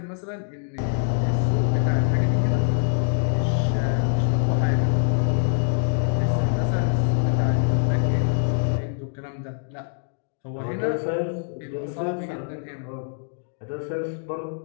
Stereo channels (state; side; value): silent; right; digital silence